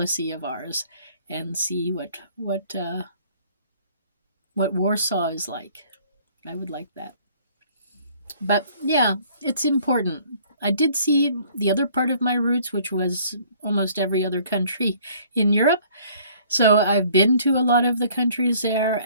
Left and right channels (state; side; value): inverted; both; correlation -0.57